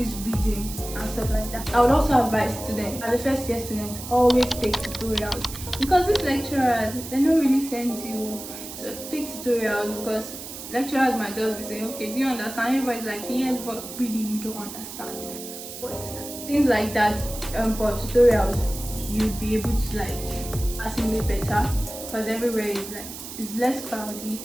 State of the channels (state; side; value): noise; right; hiss, 11 dB below the sound